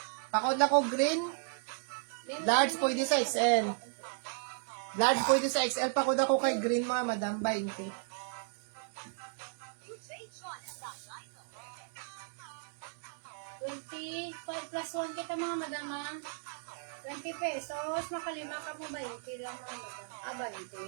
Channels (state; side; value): silent; left; digital silence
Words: Pakod ako green. Large pwede sa XL. Large pwede sa XL. Pakod ako kay green mga madam. 20. Plus 1 kita mga madam ha. 20 pesos. Makalima ka mo 20 lang mga madam.